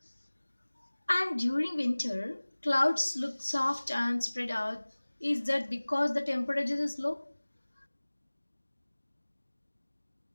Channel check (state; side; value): inverted; both; correlation -1.00